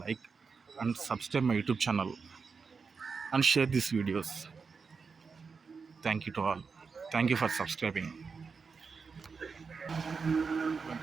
like and subscribe my YouTube channel and share this videos. Thank you to all. Thank you for subscribing.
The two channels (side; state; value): left; quieter; 5.2 dB